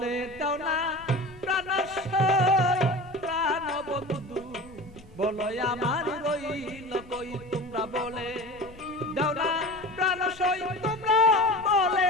দাও না প্রাণ প্রাণ বন্ধু, বলো আমার রইল কই। তোমরা বলে দাও না প্রাণ তোমরা বলে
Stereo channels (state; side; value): noise; left; rumble, 22 dB below the sound